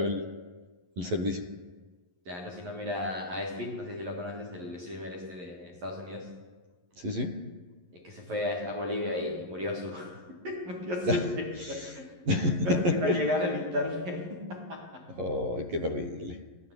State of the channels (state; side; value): late; left; 11 ms